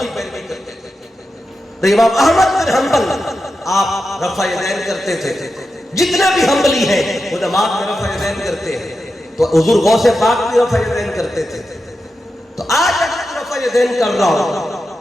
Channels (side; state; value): both; normal; correlation 0.90